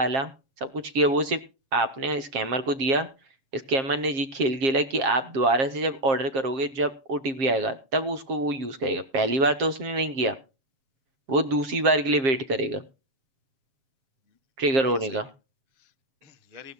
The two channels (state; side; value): late; left; 7.5 ms